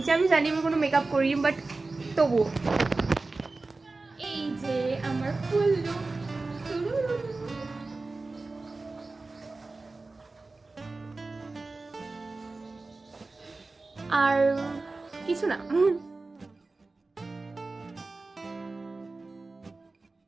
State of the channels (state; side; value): quieter; left; 3.5 dB